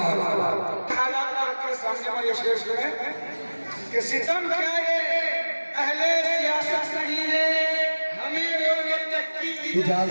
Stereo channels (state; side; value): inverted; both; correlation -1.00